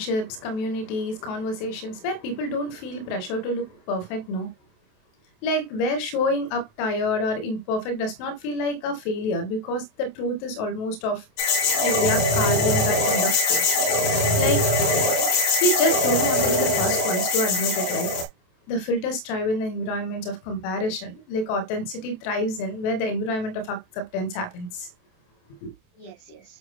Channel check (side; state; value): right; late; 27 ms